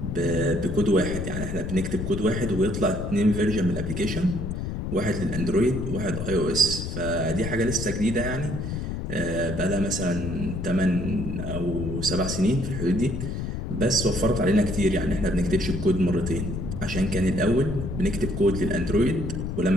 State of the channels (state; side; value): noise; left; rumble, 4 dB below the sound